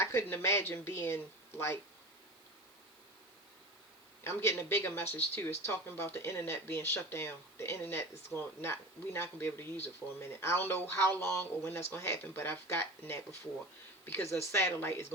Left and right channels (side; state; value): right; noise; hiss, 28 dB below the sound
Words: couldn't imagine being like, I'm getting a bigger message too. It's talking about the internet being shut down. The internet is we're not gonna be able to use it for a minute. I don't know how long or when that's gonna happen, but I've gotten that before, because a satellite is